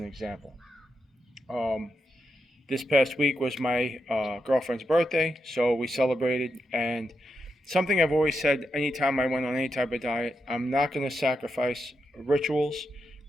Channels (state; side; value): normal; both; correlation 0.85